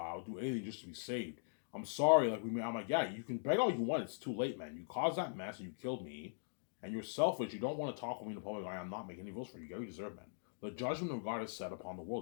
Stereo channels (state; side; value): silent; right; digital silence